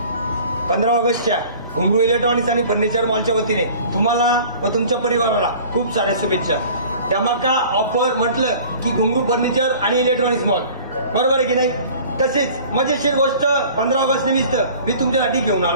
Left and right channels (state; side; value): inverted; both; correlation -0.46